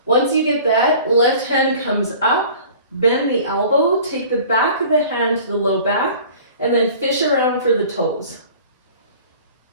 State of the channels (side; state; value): both; inverted; correlation -0.45